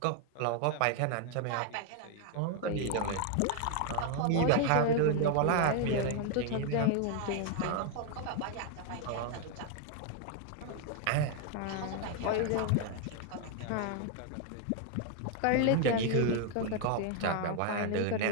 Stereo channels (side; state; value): both; different; correlation 0.00